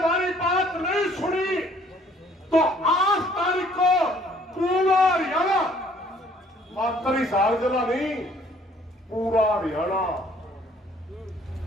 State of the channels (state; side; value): normal; both; correlation 0.59